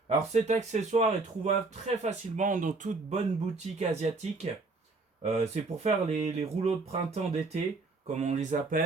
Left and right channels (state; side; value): quieter; left; 3.7 dB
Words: Alors cet accessoire est trouvable très facilement dans toute bonne boutique asiatique. C'est pour faire les rouleaux de printemps d'été, comme on les